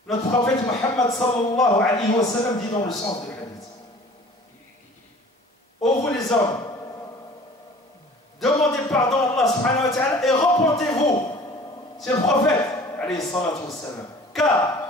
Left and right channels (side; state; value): both; normal; correlation 0.47